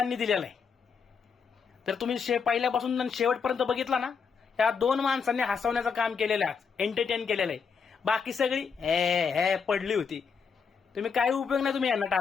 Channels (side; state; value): right; quieter; 5.9 dB